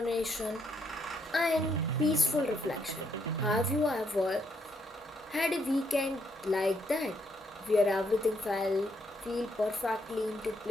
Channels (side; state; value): both; normal; correlation 0.74